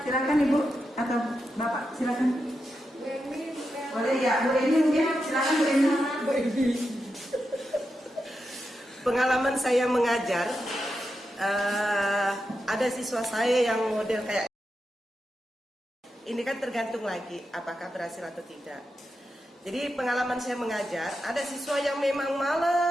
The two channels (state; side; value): normal; both; correlation 0.87